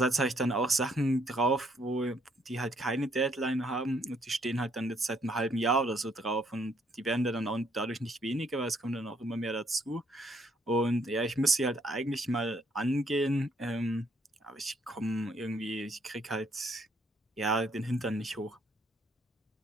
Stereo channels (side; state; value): both; normal; correlation 0.68